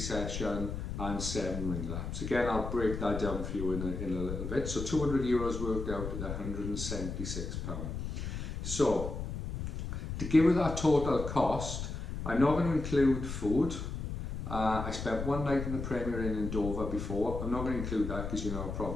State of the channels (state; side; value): noise; left; rumble, 5 dB below the sound